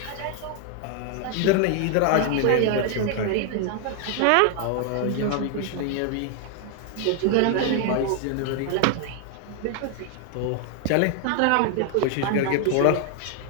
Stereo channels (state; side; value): different; both; correlation 0.00